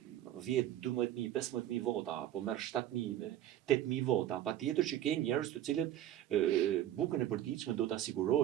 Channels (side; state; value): left; quieter; 12.2 dB